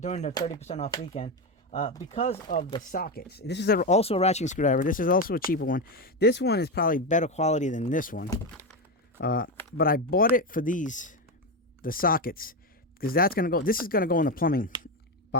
the 30% off weekend. Because of the sockets. This is also a ratcheting screwdriver. This is also a cheaper one. This one is probably better quality than this one. But I bought it for the sockets, because this is gonna go in the plumbing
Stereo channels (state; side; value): normal; both; correlation 0.13